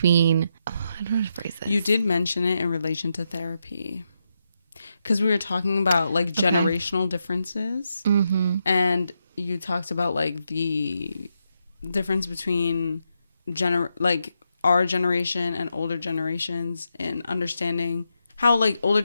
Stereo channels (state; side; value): inverted; both; correlation -0.83